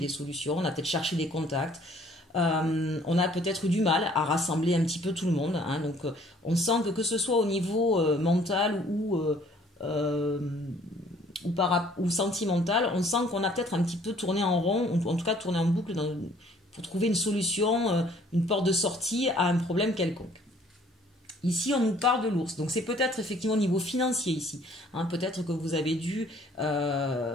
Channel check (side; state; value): both; normal; correlation 0.58